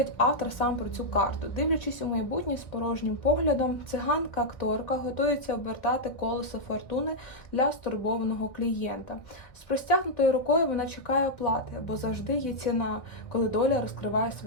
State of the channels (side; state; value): right; late; 1.9 ms